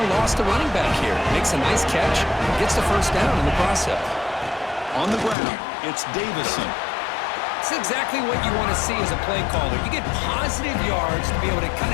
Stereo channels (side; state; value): right; drops out; at 5.4 s